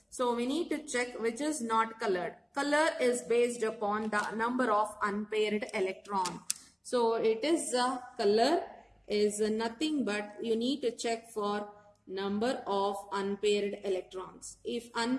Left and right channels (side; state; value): both; identical; correlation 1.00